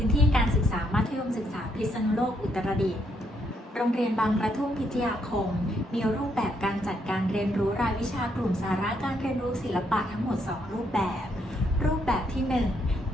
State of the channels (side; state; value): both; normal; correlation 0.75